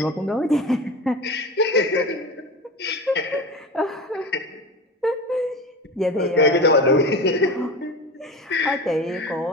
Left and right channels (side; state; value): both; normal; correlation 0.29